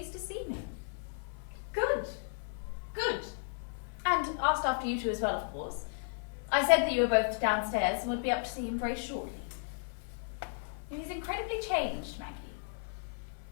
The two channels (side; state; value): right; silent; 55 dB below the other